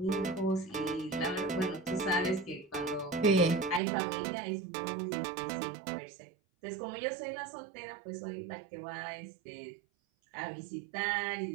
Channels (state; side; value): drops out; left; at 3.8 s